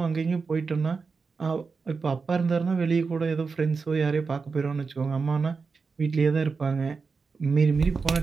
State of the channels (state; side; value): quieter; left; 4.8 dB